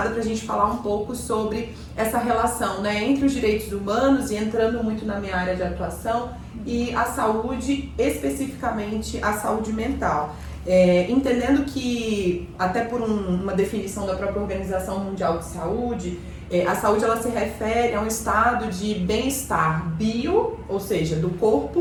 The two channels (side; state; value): both; identical; correlation 1.00